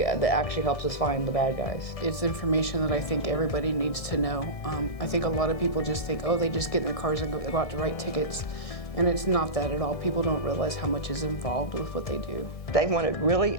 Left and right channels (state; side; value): late; right; 1.6 ms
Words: actually helps us find the bad guys. It's information that I think everybody needs to know. I think a lot of people just think, oh, they just get in their cars and go out to write tickets. And it's not that at all. People don't realize how much is involved with what they do. They want to really